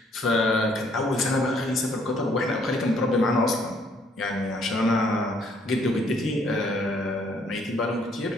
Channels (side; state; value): both; normal; correlation 0.65